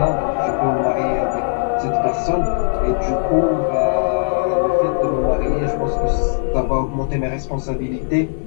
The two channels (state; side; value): silent; right; 62 dB below the other